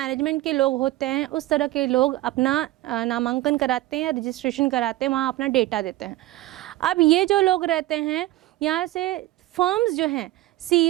के लोग होते हैं, उस तरह के लोग अपना नामांकन कराते हैं, रजिस्ट्रेशन कराते हैं, वहाँ अपना डेटा देते हैं। अब ये जो लोग रहते हैं, यहाँ से फर्म्स जो हैं,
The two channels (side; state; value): left; quieter; 16.8 dB